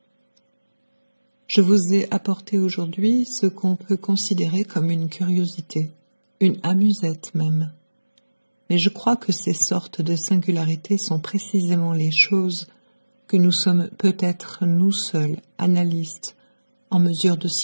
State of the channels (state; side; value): inverted; both; correlation -1.00